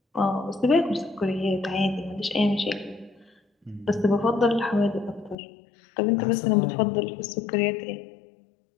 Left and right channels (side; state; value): right; drops out; at 5.4 s